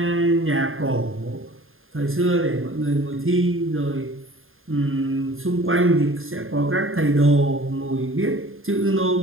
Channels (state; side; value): late; left; 0.60 ms